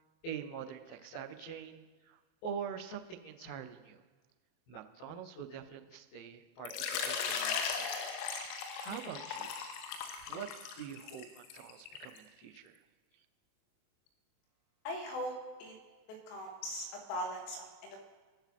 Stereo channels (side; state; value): right; late; 24 ms